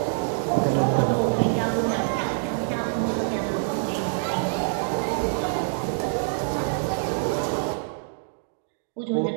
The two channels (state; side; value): silent; left; digital silence